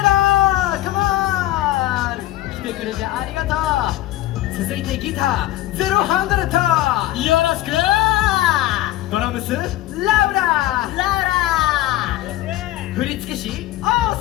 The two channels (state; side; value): quieter; right; 15.3 dB